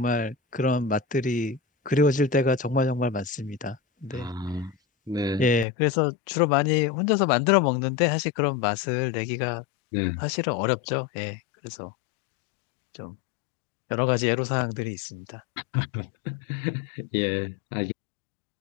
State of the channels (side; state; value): right; drops out; at 5.7 s